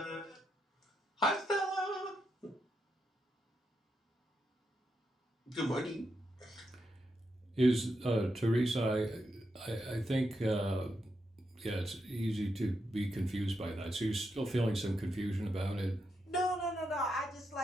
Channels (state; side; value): normal; both; correlation 0.84